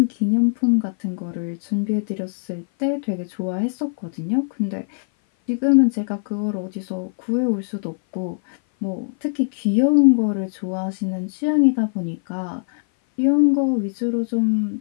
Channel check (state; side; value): silent; right; 58 dB below the other